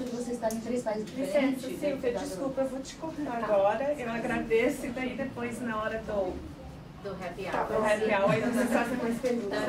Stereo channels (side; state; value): both; identical; correlation 1.00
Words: de vocês estarem em 3 países diferentes... Licença, Silvia, desculpa, eu vou te cortar agora. Eu agradeço e daí depois, na hora do happy hour, aí vocês fazem mais perguntas.